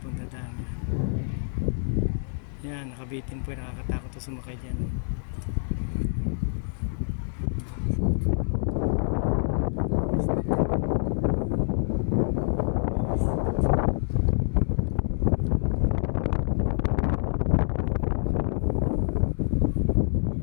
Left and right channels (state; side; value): silent; right; digital silence